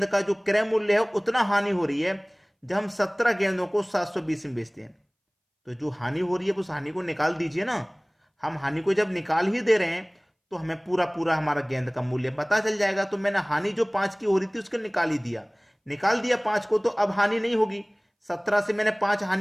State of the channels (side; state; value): both; identical; correlation 1.00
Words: का जो क्रय मूल्य है उतना हानि हो रही है जब हम 17 गेंदों को 720 में बेचते हैं। तो जो हानि हो रही है उस हानि को निकाल दीजिए ना। हम हानि को जब निकाल ही दे रहे हैं तो हमें पूरा पूरा हमारा गेंद का मूल्य पता चल जाएगा। तो मैंने हानि जो 5 की हो रही थी उसको निकाल दिया 5 को, तो अब हानि नहीं होगी। 17 से मैंने 5